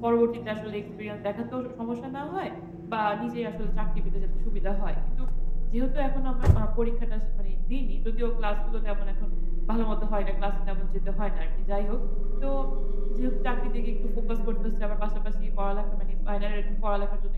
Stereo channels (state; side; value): identical; both; correlation 1.00